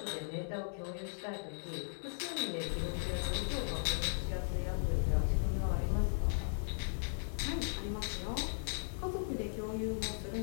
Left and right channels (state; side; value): silent; right; 53 dB below the other